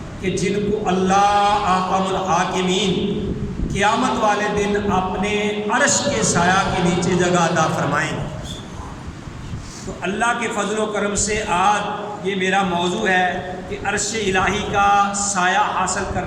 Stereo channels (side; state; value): both; identical; correlation 1.00